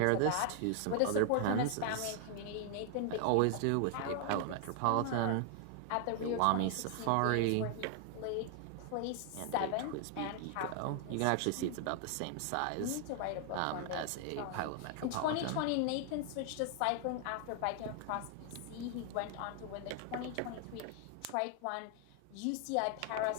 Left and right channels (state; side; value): different; both; correlation 0.00